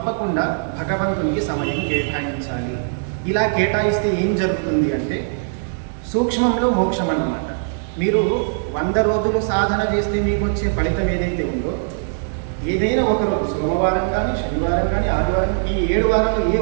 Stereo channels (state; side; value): silent; left; digital silence